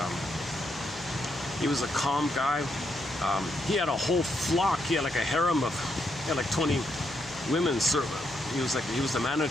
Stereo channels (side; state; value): left; noise; hum, 25 dB below the sound